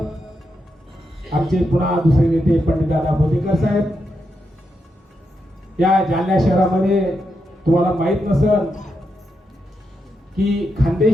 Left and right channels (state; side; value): normal; both; correlation 0.84